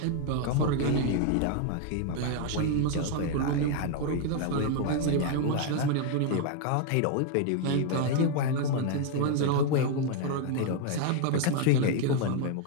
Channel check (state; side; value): different; both; correlation 0.00